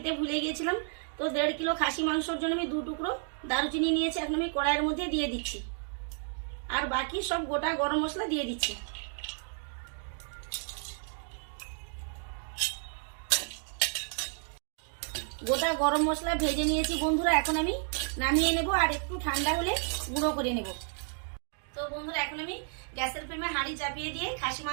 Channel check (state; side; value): silent; left; 57 dB below the other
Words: ভুলে গিয়েছিলাম। তো 1.5 কিলো খাসি মাংসের জন্য আমি 2 টুকরো দারুচিনি নিয়েছি। এখন আমি কড়াইয়ের মধ্যে দিয়ে দিচ্ছি, আর বাকি সব গোটা গরম মশলা দিয়ে দিচ্ছি। গোটা গরম মশলা ভেজে নিয়েছি বন্ধুরা। এখন আমি নামিয়ে নেব আর একটু ঠান্ডা হলে গুঁড়ো করে নেব। তো বন্ধুরা এখন আমি গ্যাসের ফ্লেমে হাঁড়ি চাপিয়ে দিয়ে খাসি